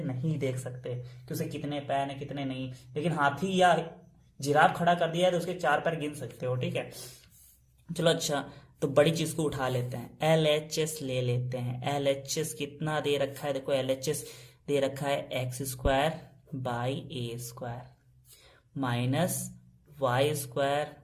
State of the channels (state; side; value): identical; both; correlation 1.00